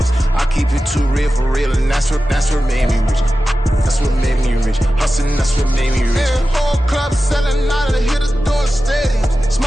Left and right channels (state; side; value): normal; both; correlation 0.94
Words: I keep it too real for real, and that's what made me rich. That's what made me rich. Hustling, that's what made me rich. Yeah, whole club selling out of the hitters doing stadiums.